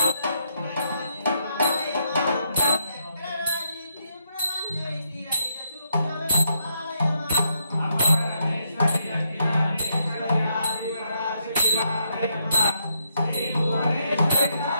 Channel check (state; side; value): inverted; both; correlation -0.78